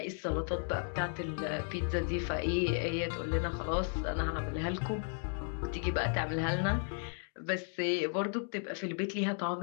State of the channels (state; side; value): silent; right; 55 dB below the other